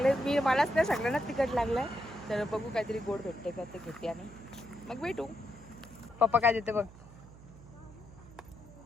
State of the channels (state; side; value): noise; right; hum, 19 dB below the sound